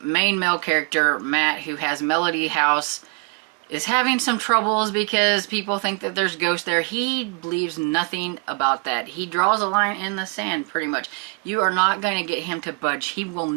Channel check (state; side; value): quieter; left; 33.2 dB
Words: main male character, Matt, who has Melody House, is having some troubles because people think that there's ghosts there, he believes nothing about that. He draws a line in the sand, pretty much. You are not going to get him to budge. He will